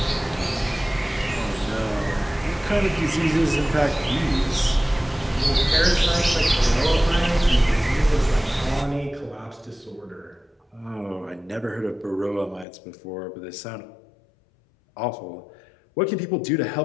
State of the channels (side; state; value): right; drops out; at 12.7 s